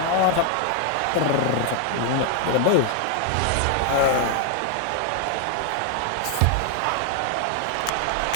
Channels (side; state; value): both; different; correlation 0.00